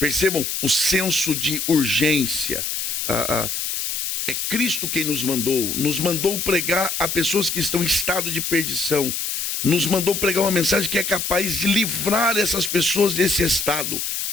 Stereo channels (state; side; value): noise; left; hiss, 2 dB below the sound